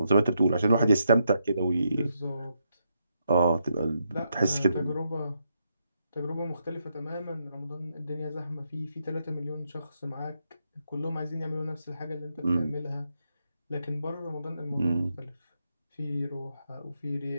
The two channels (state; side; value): inverted; both; correlation -0.80